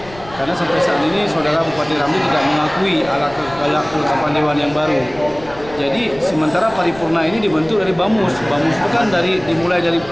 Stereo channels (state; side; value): noise; left; rumble, 19 dB below the sound